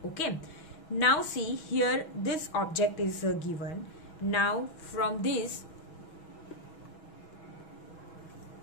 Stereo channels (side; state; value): right; late; 6.2 ms